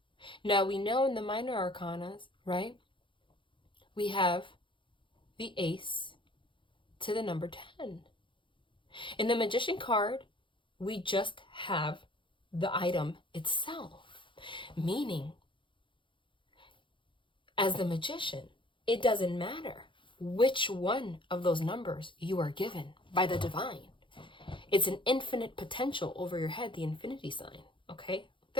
Now we know in the minor arcanas, right, we have the ace to the number 10. In the Magician card, we just have the item itself, meaning as the magician, it doesn't matter which one of those numbers you are given by the divine. It's an infinite potential over your head, the infinity sign, okay?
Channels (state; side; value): late; right; 0.24 ms